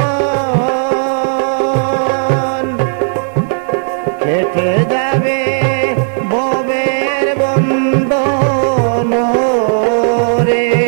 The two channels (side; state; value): left; silent; digital silence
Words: কেটে যাবে ববের বন্ধন রে,